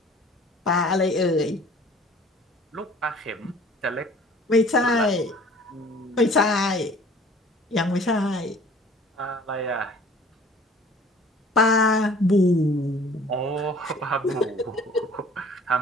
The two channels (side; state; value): both; normal; correlation 0.50